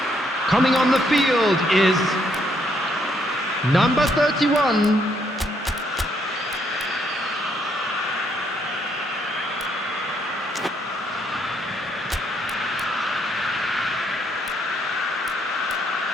Coming on the field is number 31.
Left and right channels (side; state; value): both; normal; correlation 0.72